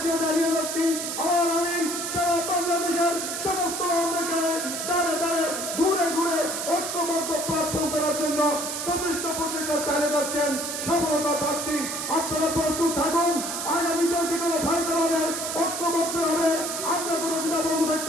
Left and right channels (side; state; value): right; noise; hiss, 4 dB below the sound